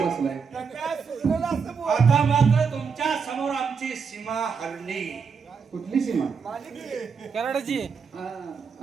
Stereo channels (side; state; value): left; quieter; 5.8 dB